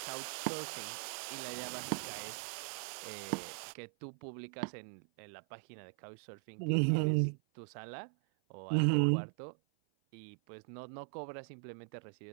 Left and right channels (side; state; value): left; silent; 52 dB below the other